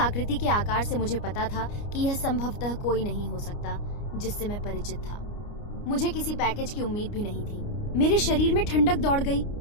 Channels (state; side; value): late; right; 29 ms